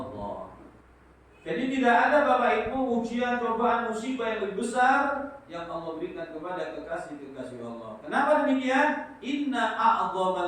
Jadi tidak ada Bapak Ibu ujian, cobaan, musibah yang lebih besar yang Allah berikan kepada kekasih-kekasih Allah. Kenapa demikian? Inna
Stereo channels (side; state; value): both; identical; correlation 1.00